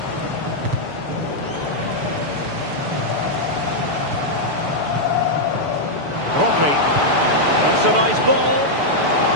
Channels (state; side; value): late; left; 6.9 ms